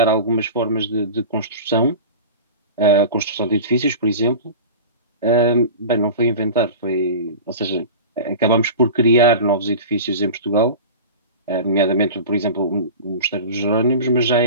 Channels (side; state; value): both; inverted; correlation -0.32